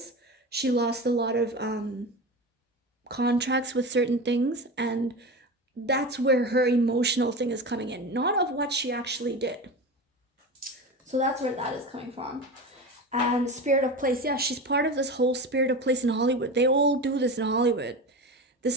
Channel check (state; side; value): normal; both; correlation 0.27